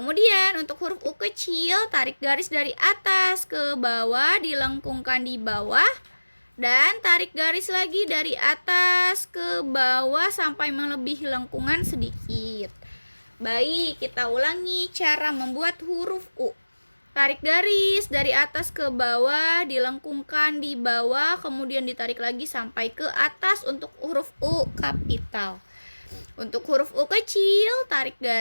untuk huruf U kecil, tarik garis dari atas ke bawah, dilengkungkan di bawah, dan tarik garis lagi dari atas ke bawah sampai melebihi lengkungan sedikit. Baik, kita ulangi cara membuat huruf U. Tarik garis dari atas ke bawah, dilengkungkan di bawah, kemudian ditarik lagi sampai ke atas untuk huruf U kapital. Untuk huruf U kecil, tarik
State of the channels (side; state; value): both; inverted; correlation -1.00